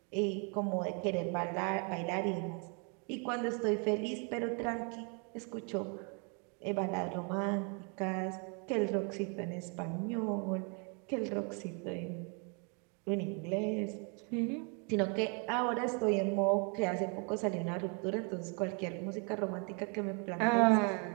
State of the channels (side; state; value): left; quieter; 36.8 dB